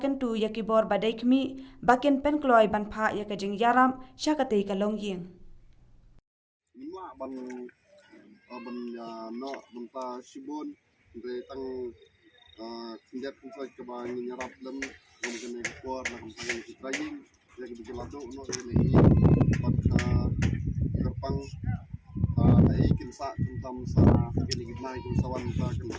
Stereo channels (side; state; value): both; identical; correlation 1.00